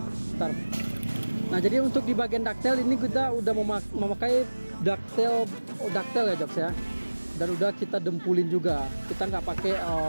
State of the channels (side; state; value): both; inverted; correlation -1.00